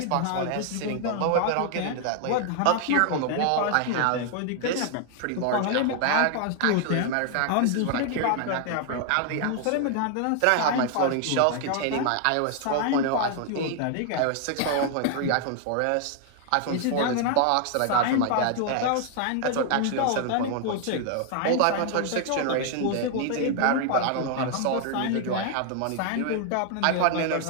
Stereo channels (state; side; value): different; both; correlation 0.00